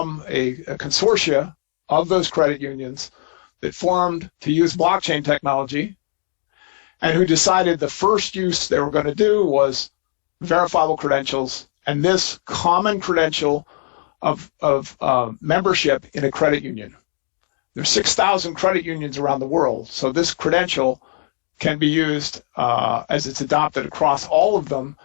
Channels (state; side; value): silent; right; 59 dB below the other